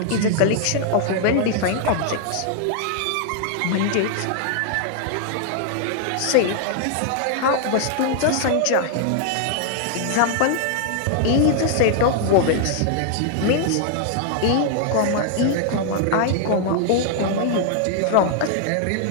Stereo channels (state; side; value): different; both; correlation 0.00